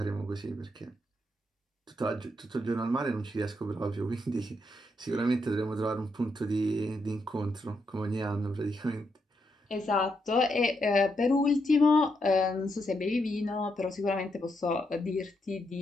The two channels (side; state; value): both; normal; correlation 0.80